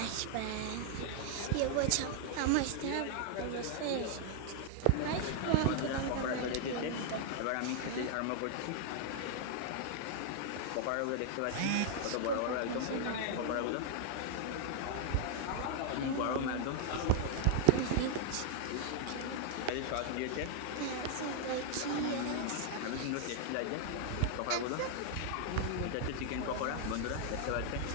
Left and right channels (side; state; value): both; different; correlation 0.00